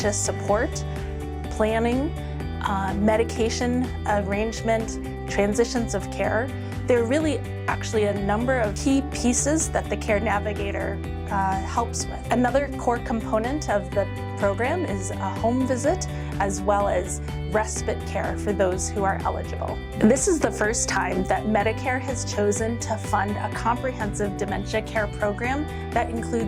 support, planning, medication arrangement, transitions of care. There are really actually a number of key pieces that the care navigator helps with. Another core component of the program is a home visit as well as respite care for those who are eligible. This is the first time that Medicare has chosen to fund a comprehensive dementia care program that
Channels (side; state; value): both; identical; correlation 1.00